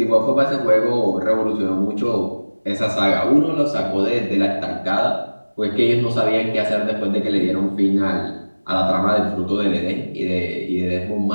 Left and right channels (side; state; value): both; inverted; correlation -1.00